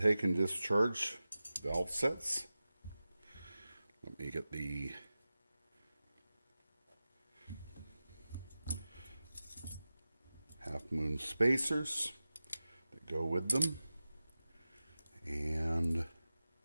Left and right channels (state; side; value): inverted; both; correlation -0.95